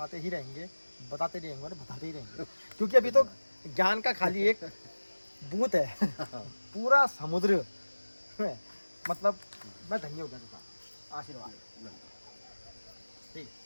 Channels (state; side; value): inverted; both; correlation -1.00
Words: ही रहेंगे क्योंकि अभी तो ज्ञान का खाली एक बूंद है, पूरा समुद्र है। मतलब मैं धन्य हो गया, आशीर्वाद। ठीक।